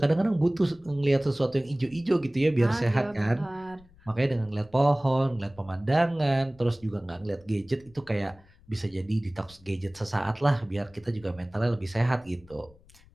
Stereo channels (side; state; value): left; noise; rumble, 26 dB below the sound